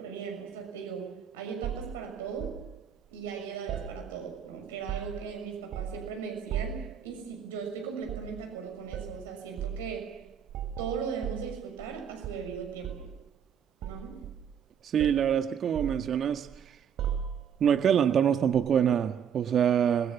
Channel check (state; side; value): quieter; left; 8.1 dB